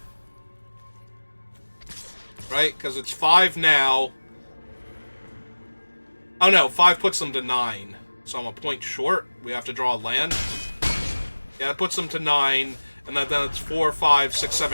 Right, because it's 5 now. Oh no, 5 puts them to 9. So I'm a point short. We have to draw a land. Yeah, it puts them to 9. And then it's 4, 5, 6,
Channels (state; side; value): inverted; both; correlation -1.00